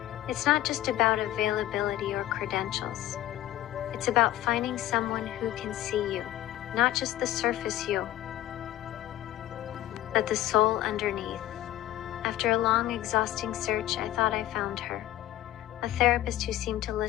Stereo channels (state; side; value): quieter; right; 13.9 dB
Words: It's not just about availability or credentials. It's about finding someone who can see you, not just the surface you, but the soul underneath. After a long, exhausting search, I thought I found her. A therapist who seemed to